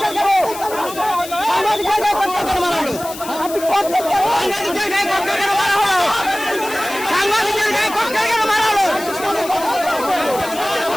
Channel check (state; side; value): noise; left; hiss, 13 dB below the sound